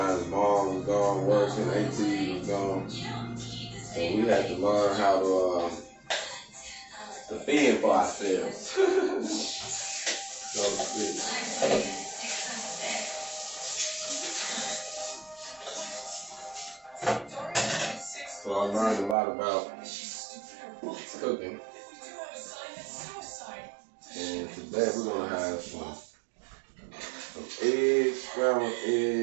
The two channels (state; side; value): drops out; left; at 19.2 s